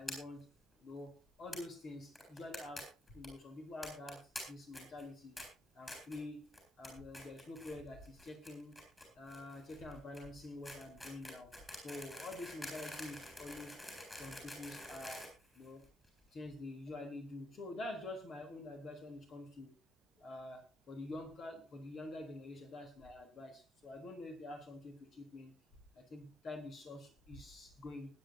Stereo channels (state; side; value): normal; both; correlation 0.79